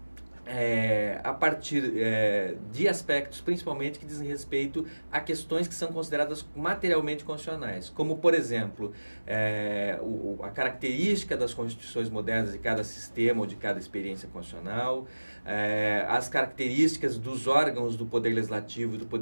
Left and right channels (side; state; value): both; inverted; correlation -1.00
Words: a partir de aspectos principalmente que dizem respeito a questões que são consideradas materialmente constitucionais, como, por exemplo, a característica das constituições modernas de cada sistema ou de cada experiência constitucional, as características dos órgãos do Poder Legislativo e do